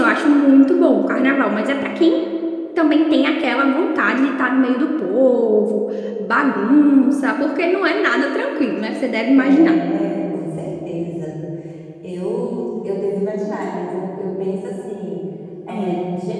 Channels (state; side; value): identical; both; correlation 1.00